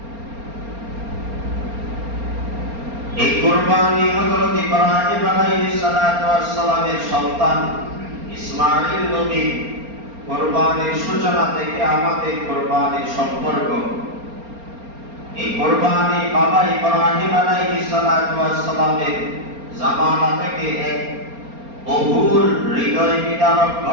এই কুরবানি হযরত ইব্রাহিম আলাইহিস সালাতু ওয়াস সালামের সন্তান ইসমাঈল নবী কুরবানির সূচনা থেকে আমাদের কুরবানির সম্পর্ক। এই কুরবানি বাবা ইব্রাহিম আলাইহিস সালাতু ওয়াস সালামের জামানা থেকে এক বহুল হৃদয় বিদারক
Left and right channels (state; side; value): late; left; 4.3 ms